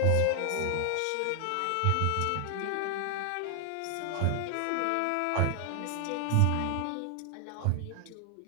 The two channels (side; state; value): both; different; correlation 0.00